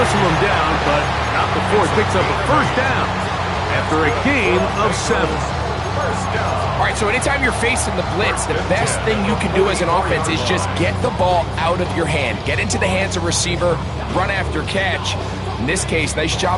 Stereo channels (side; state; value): both; identical; correlation 1.00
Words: him down, but not before it picks up a first down after a gain of 7. All right, so anytime you're facing the blitz, the best thing you can do as an offense is just get the ball out of your hand. Get into the hands of receiver, run after catch. In this case, nice